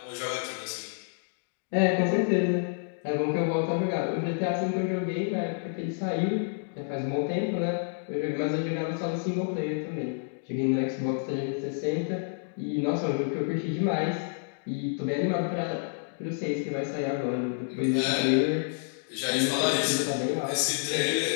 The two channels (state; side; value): silent; right; digital silence